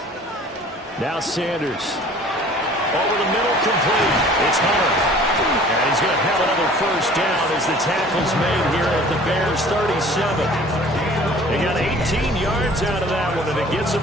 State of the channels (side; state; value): both; normal; correlation 0.49